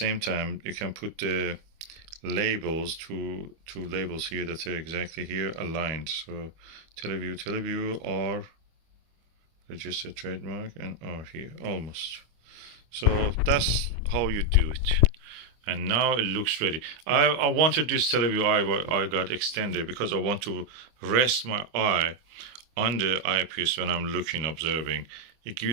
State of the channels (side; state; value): left; late; 25 ms